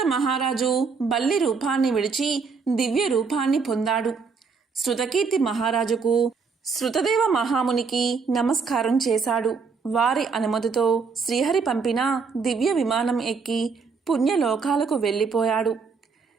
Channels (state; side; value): quieter; left; 5.1 dB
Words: మహారాజు బల్లి రూపాన్ని విడిచి దివ్య రూపాన్ని పొందాడు. శృతకీర్తి మహారాజుకు శృతదేవ మహామునికి నమస్కారం చేశాడు. వారి అనుమతితో శ్రీహరి పంపిన దివ్య విమానం ఎక్కి పుణ్యలోకాలకు వెళ్ళిపోయాడు.